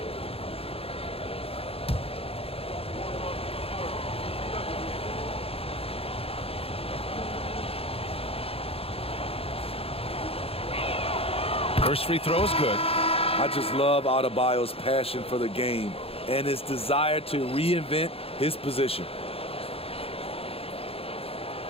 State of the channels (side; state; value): right; late; 0.28 ms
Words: First free throw is good. I just love Adebayo's passion for the game and his desire to reinvent his position.